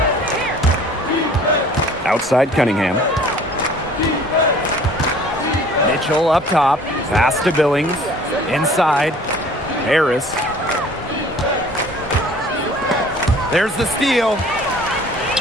Outside Cunningham. Mitchell up top. Pass to Billings. Inside. Harris. There's the steal.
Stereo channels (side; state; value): both; normal; correlation 0.50